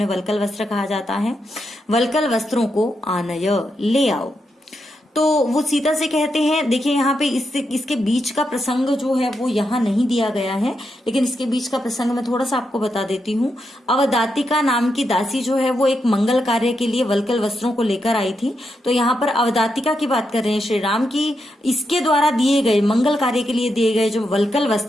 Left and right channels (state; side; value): normal; both; correlation 0.84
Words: वल्कल वस्त्र कहा जाता है, वल्कल वस्त्रों को आनय ले आओ। तो वो सीता से कहते हैं, देखिए यहाँ पे इसके बीच का प्रसंग जो है वो यहाँ नहीं दिया गया है, लेकिन इसके बीच का प्रसंग मैं थोड़ा सा आपको बता देती हूँ। अवदातिका नाम की दासी जो है वो एक मंगल कार्य के लिए वल्कल वस्त्रों को लेकर आई थी। तो यहाँ पर अवदातिका की बात कर रहे हैं श्री राम की, इसके द्वारा दिए गए मंगल कार्य के लिए दिए गए जो वल्कल